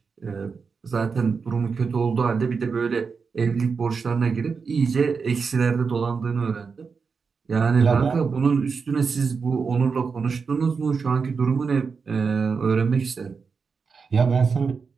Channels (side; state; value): left; quieter; 5.3 dB